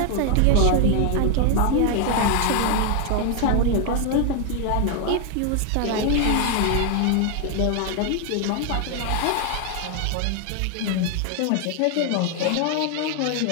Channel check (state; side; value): different; both; correlation 0.00